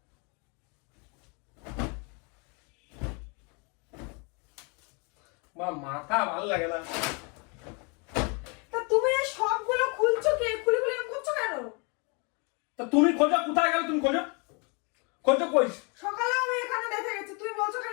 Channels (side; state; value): right; quieter; 33.4 dB